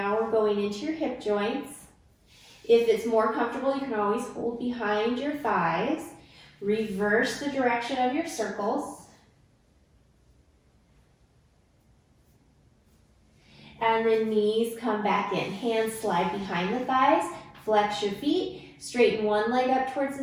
we're going into your hip joints. If it's more comfortable, you can always hold behind your thighs. Reverse the direction of your circles. And then knees come back in. Hands slide behind the thighs. Flex your feet. Straighten one leg up towards the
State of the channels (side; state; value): both; identical; correlation 1.00